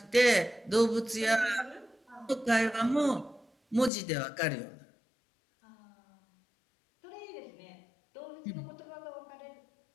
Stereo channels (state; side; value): drops out; right; at 3.9 s